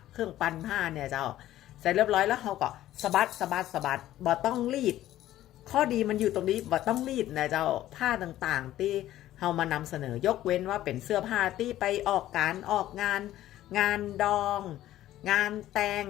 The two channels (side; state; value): right; quieter; 13.8 dB